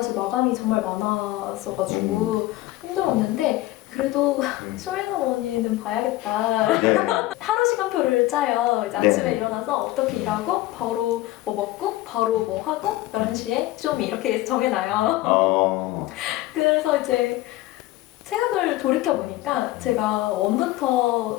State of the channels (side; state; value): right; quieter; 17.0 dB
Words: 마감이 정말 많았어가지고 힘들었는데 그래도 쇼미더머니는 봐야겠다. 네. 하루 시간표를 짜요. 이제 아침에 네. 일어나서 어떻게 일하고 바로 뭐 먹고 바로 뭐 하고 11시에 쇼미 이렇게 정해놔요. 그래서 이제 생각을 돌이켜보니까 제가